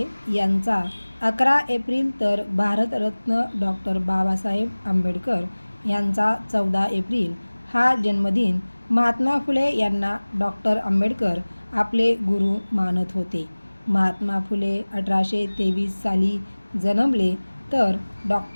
यांचा 11 एप्रिल तर भारतरत्न डॉक्टर बाबासाहेब आंबेडकर यांचा 14 एप्रिल हा जन्मदिन. महात्मा फुले यांना डॉक्टर आंबेडकर आपले गुरु मानत होते. महात्मा फुले 1823 साली जन्मले तर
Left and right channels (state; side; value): inverted; both; correlation -1.00